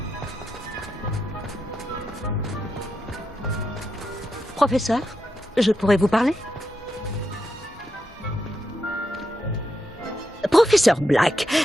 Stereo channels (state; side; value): normal; both; correlation 0.85